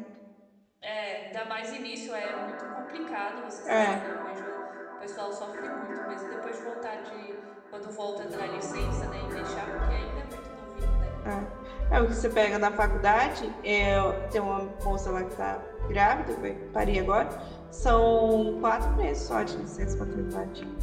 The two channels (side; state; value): both; identical; correlation 1.00